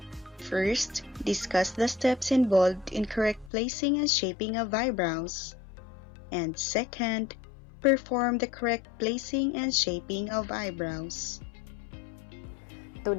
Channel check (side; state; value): right; drops out; at 3.5 s